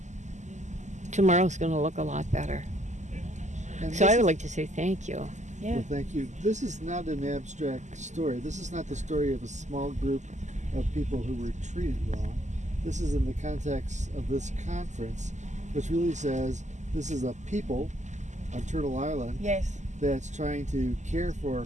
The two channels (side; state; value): left; late; 0.34 ms